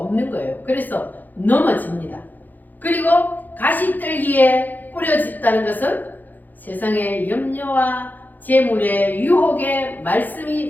거예요. 그래서 넘어집니다. 그리고 가시떨기에 뿌려졌다는 것은 세상의 염려와 재물의 유혹에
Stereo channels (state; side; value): late; right; 0.085 ms